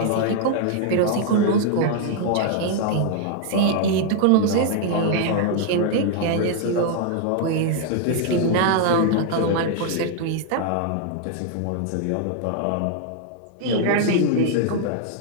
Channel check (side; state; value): both; different; correlation 0.00